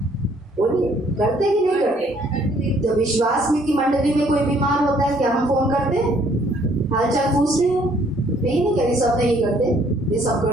बोलिए, करते कि नहीं करते? तो विश्वास में की मंडली में कोई बीमार होता है क्या हम फोन करते? हालचाल पूछते हैं? नहीं कह रही सब नहीं करते, ये सब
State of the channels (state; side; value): normal; both; correlation 0.63